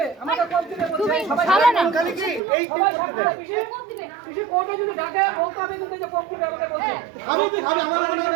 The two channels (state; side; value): drops out; left; at 2.4 s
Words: আমাকে কোপ দিবে বলছে সবাই খালি কি এই সবাই সাক্ষী থাকবে পিসি কোর্টে যদি ডাকে বলতে হবে কিন্তু যে কোপ দিবে আমাকে বলছে আমি কি খাবে আমার